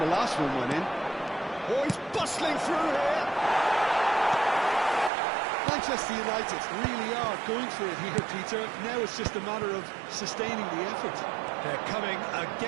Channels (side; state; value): left; drops out; at 5.1 s